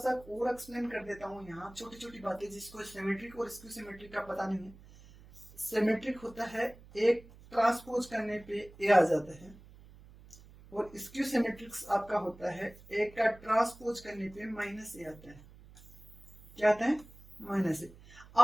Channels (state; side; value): noise; right; hum, 21 dB below the sound